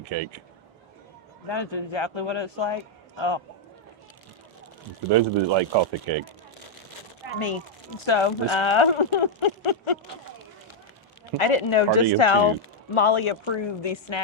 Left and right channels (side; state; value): both; normal; correlation -0.02